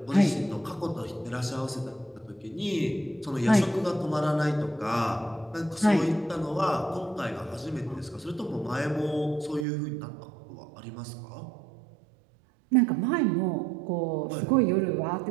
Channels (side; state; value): left; drops out; at 9.7 s